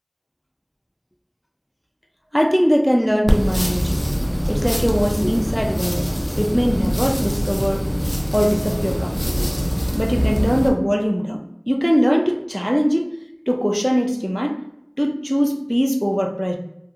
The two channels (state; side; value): identical; both; correlation 1.00